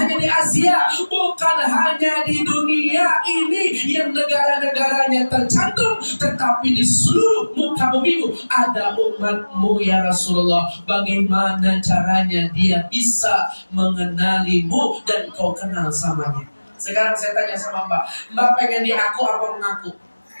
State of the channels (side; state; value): both; inverted; correlation -1.00